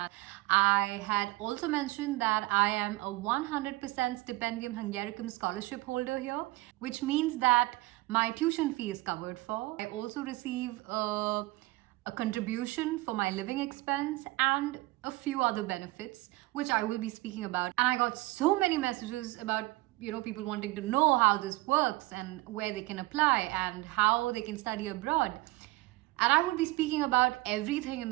I had also mentioned that I am a 100% Stipendium Hungaricum scholarship holder here, which means that my tuition fee is covered for. I also receive a contribution for my living expense and a few other benefits, which I will be speaking about. And I got so many messages about people wanting to know how this works and where they can apply and how they can study abroad. And I will be speaking about everything in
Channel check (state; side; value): quieter; left; 20.9 dB